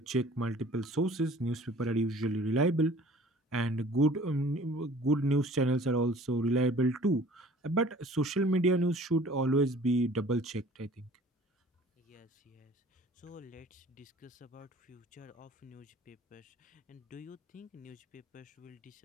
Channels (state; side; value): normal; both; correlation 0.50